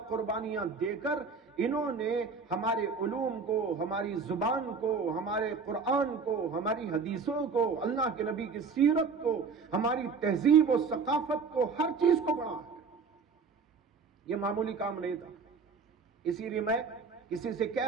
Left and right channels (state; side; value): quieter; left; 5.1 dB